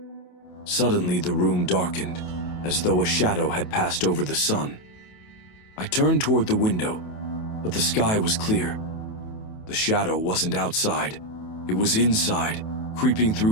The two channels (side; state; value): right; late; 28 ms